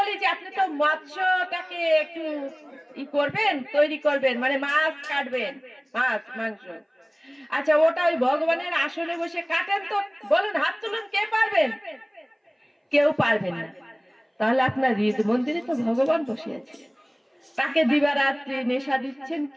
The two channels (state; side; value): identical; both; correlation 1.00